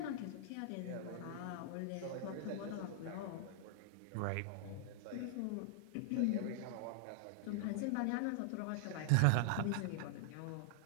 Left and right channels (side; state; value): both; different; correlation -0.01